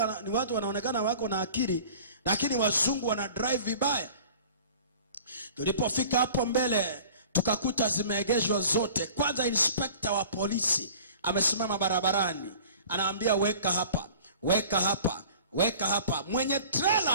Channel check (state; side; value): inverted; both; correlation -0.45